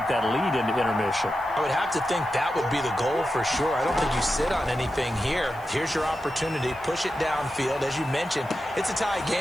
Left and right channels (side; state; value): right; noise; hiss, 26 dB below the sound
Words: that lead into intermission? I would have to think that would be the goal for sure. I don't think you sit on anything here. Here's your opportunity. Push it downfield. As you mentioned, it's a tie